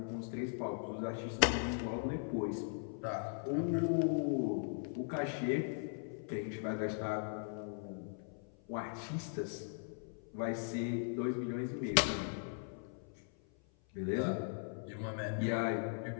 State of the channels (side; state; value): right; silent; 52 dB below the other